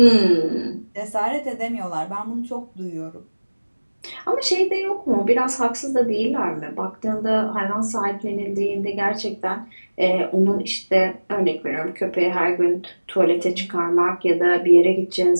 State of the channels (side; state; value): both; inverted; correlation -1.00